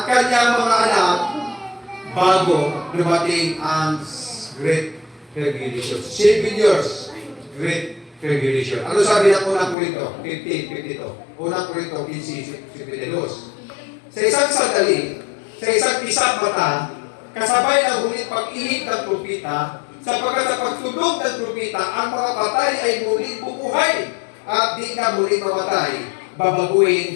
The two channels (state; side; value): drops out; right; at 9.8 s